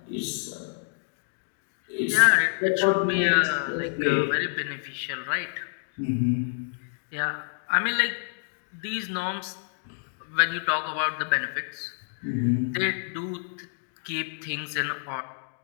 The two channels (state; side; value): silent; right; digital silence